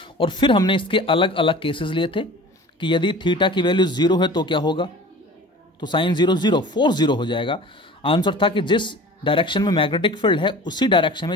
और फिर हमने इसके अलग अलग केसेस लिए थे कि यदि थीटा की वैल्यू 0 है तो क्या होगा, तो साइन 0 0 फोर्स 0 हो जाएगा। आंसर था कि जिस डायरेक्शन में मैग्नेटिक फील्ड है उसी डायरेक्शन में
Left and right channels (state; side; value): normal; both; correlation 0.41